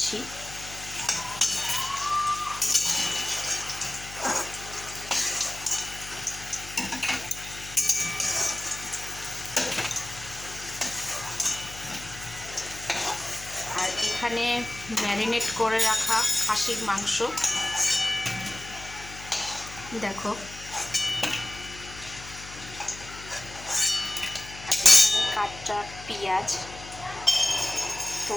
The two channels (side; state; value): left; noise; hum, 15 dB below the sound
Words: আর এখানে ম্যারিনেট করে রাখা খাসির মাংস দেখো, কাঁচা পেঁয়াজ। তো